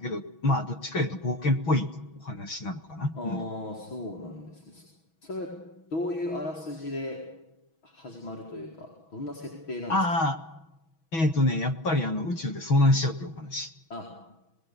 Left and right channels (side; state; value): right; late; 6.2 ms